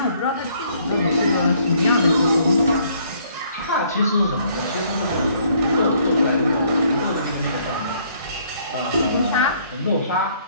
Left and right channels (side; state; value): both; inverted; correlation -0.64